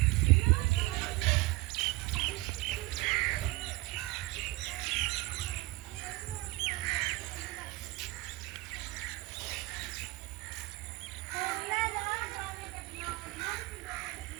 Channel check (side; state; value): left; quieter; 20.6 dB